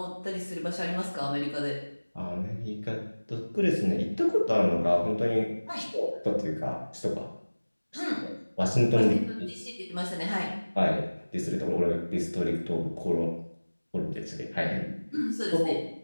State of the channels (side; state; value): both; inverted; correlation -1.00